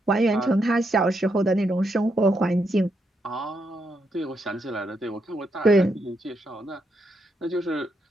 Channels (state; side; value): normal; both; correlation 0.80